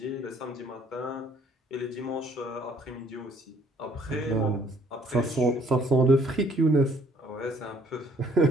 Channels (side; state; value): both; normal; correlation 0.62